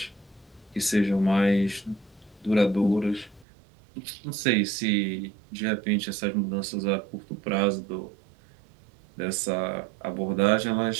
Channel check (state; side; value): drops out; left; at 3.5 s